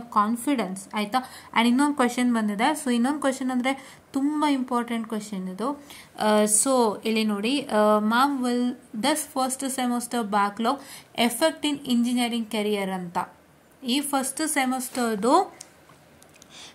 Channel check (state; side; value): identical; both; correlation 1.00